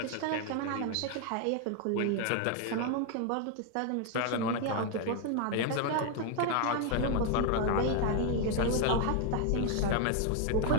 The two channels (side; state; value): both; different; correlation 0.01